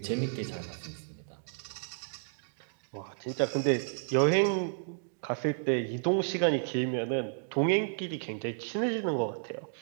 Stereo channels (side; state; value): left; silent; digital silence